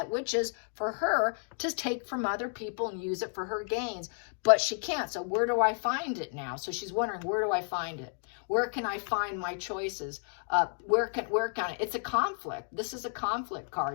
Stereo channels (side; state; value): right; silent; 57 dB below the other